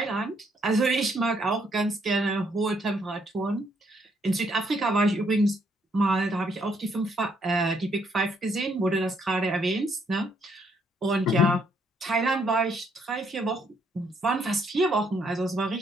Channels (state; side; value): normal; both; correlation 0.71